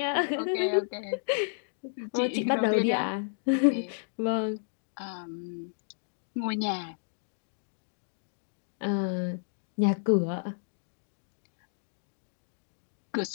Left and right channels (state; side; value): silent; right; digital silence